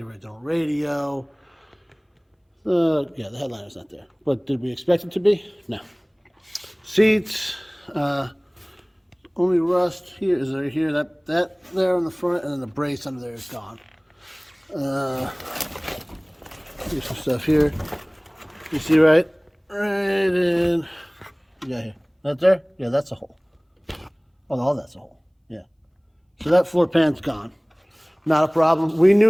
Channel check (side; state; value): both; identical; correlation 1.00